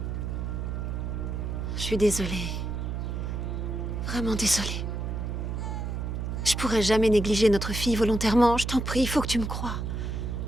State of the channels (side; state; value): right; noise; hum, 3 dB below the sound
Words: Je suis désolée. Vraiment désolée. Je pourrais jamais négliger notre fille volontairement. Je t'en prie, il faut que tu me crois.